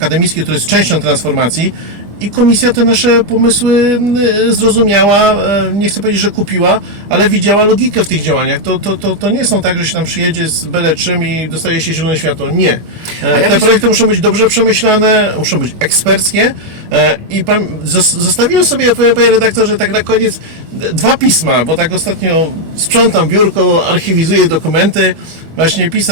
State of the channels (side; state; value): left; late; 25 ms